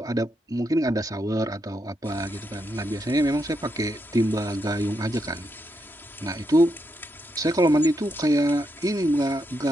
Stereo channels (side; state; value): both; normal; correlation 0.82